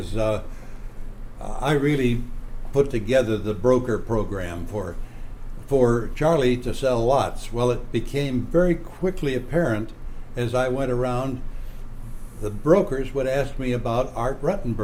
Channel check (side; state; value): both; identical; correlation 1.00